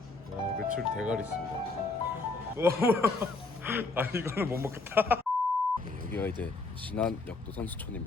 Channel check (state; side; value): quieter; right; 3.5 dB